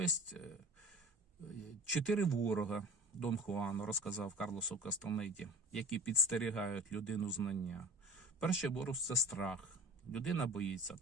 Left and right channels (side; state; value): both; normal; correlation 0.38